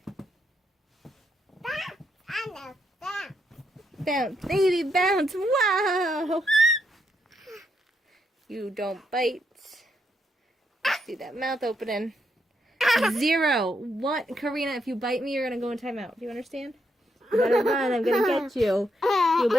Bounce. I know that. Bounce, baby, bounce. Wow. You don't bite. See that mouth opening. 0, 1. Karina, if you bite me, you're going to go in timeout. Do you understand? You better run. I'm going to get you. You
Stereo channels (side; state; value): both; normal; correlation 0.79